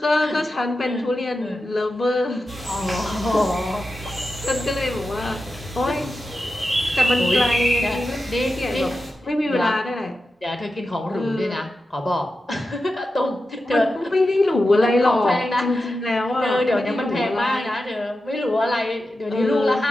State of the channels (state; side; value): normal; both; correlation 0.91